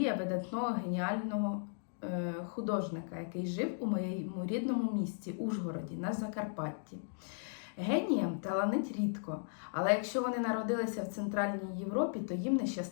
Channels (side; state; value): right; silent; digital silence